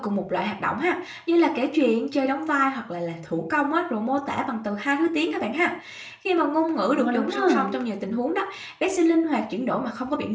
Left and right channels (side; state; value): both; identical; correlation 1.00